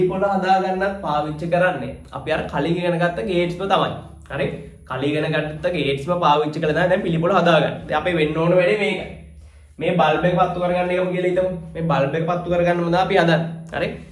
හදාගන්නත් පාවිච්චි කරන්නේ අපි අර කලින් ඉගෙන ගත්ත ගේට්ස්ම තමයි. හරි, කලින් ඉගෙන ගත්ත ගේට්ස්ම පාවිච්චි කරලා තමයි දැන් පිළිපොළ හදාගන්නේ. දැන් අපි වෙන්න ඕන වැඩේ මේකයි. මේ බල්බ් එක පත්තු කරගන්න එකම කියලා හිතමු. මේ බල්බ් එක පත්තු කරගන්න මොනවද අපි හදන්නේ. හරි,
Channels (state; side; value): identical; both; correlation 1.00